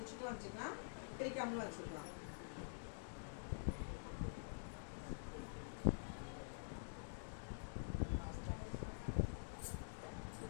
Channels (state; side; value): silent; right; digital silence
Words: வச்சுக்கலாம், பிரிக்காமலும் வச்சுக்கலாம்.